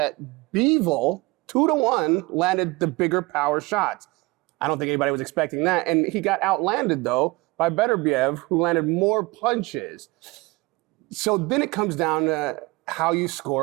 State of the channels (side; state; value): left; quieter; 23.5 dB